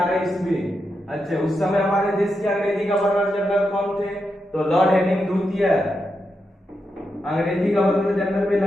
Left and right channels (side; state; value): both; normal; correlation 0.86